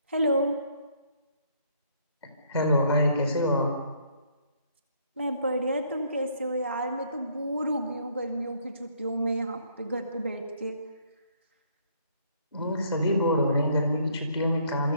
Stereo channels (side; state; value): both; inverted; correlation -0.65